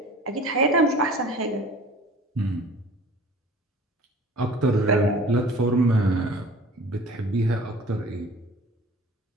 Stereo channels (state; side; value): normal; both; correlation 0.45